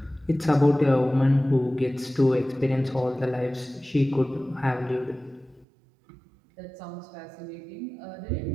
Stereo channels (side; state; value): left; drops out; at 5.7 s